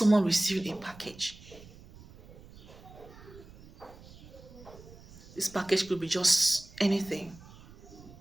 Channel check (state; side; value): noise; right; rumble, 20 dB below the sound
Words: receive a package. This package could be just anything